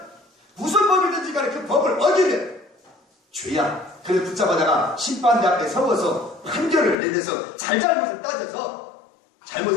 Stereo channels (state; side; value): drops out; right; at 7.0 s